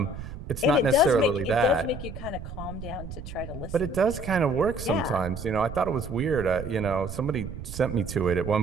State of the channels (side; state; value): right; noise; rumble, 10 dB below the sound